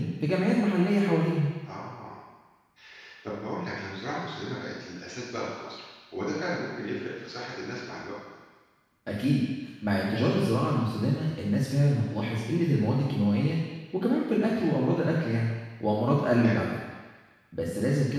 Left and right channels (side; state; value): both; identical; correlation 1.00